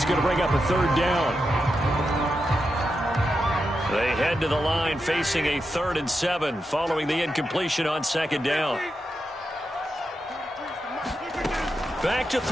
going to bring up a 3rd down. They head to the line facing a 3rd and 7 following the incompletion on 2nd down. Back to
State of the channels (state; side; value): normal; both; correlation 0.87